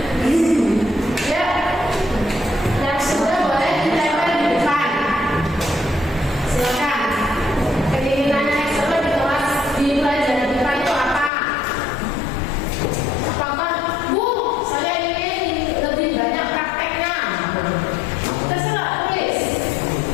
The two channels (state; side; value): drops out; right; at 11.3 s